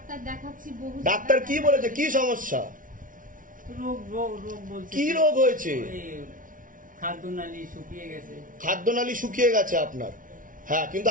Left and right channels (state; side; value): late; left; 0.38 ms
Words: ডাক্তার কি বলেছে, কি সমস্যা, কি রোগ হয়েছে? খাদ্যনালী শুকিয়ে গেছে আপনার। হ্যাঁ, কিন্তু